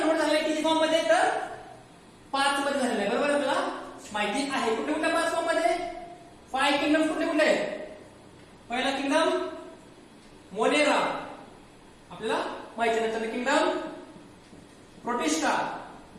झालेलं किती फॉर्म मध्ये? तर 5 मध्ये झालेलं आहे. बरोबर आपल्याला माहिती आहे. कुठे कुठे 5 फॉर्म मध्ये? 5 किंगडम कुठे कुठे? पहिला किंगडम मोनेरा आपल्याला माहिती आहे. नंतर किंगडम प्रोटिस्टा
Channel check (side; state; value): both; identical; correlation 1.00